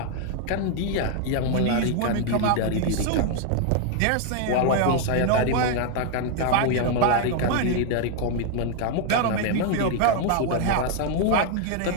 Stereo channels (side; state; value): both; different; correlation 0.00